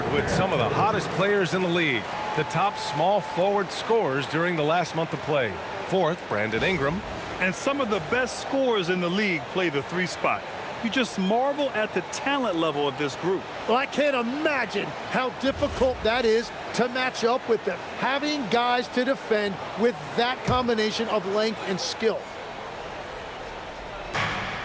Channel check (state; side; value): identical; both; correlation 1.00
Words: with some of the hottest players in the league. The top small forward scorers during the last month of play. 4th, Brandon Ingram. And some of the best scorers in the league play the 3 spot. You just marvel at the talent level of this group. Well, I can't imagine how difficult that is to match up with them. Having guys to defend with that combination of length and skill.